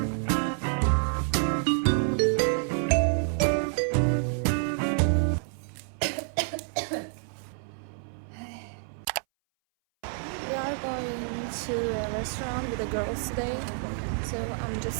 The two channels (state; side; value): silent; left; 59 dB below the other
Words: We are going to a restaurant with the girls today. So I'm